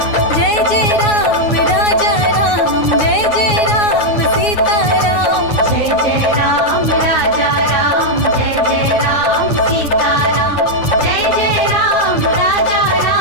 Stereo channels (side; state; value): right; late; 9.5 ms